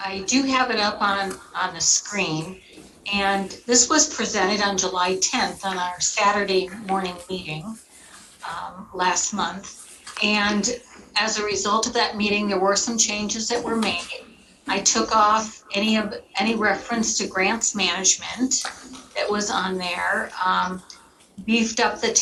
do have it up on the screen, and this was presented on July 10th on our Saturday morning meeting last month. And as a result of that meeting, there were some changes that were made. I took off any reference to grants management that was on there, beefed up the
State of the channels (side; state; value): both; identical; correlation 1.00